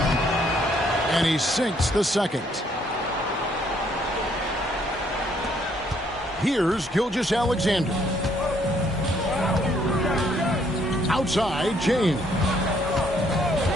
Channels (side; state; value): both; normal; correlation 0.67